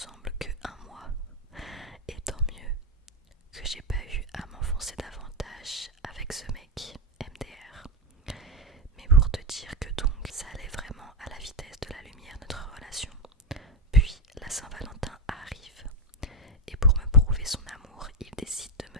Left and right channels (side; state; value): both; normal; correlation 0.07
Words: que 1 mois, et tant mieux que j'ai pas eu à m'enfoncer davantage avec ce mec MDR. Mais pour te dire que donc ça allait vraiment à la vitesse de la lumière notre relation. Puis la Saint-Valentin arrive, et pour me prouver son amour, il décide de